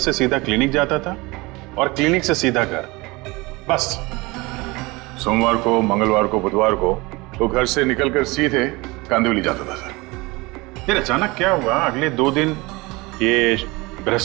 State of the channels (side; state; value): left; quieter; 23.6 dB